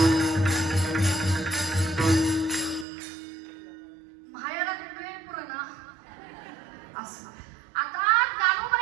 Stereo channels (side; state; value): left; drops out; at 2.9 s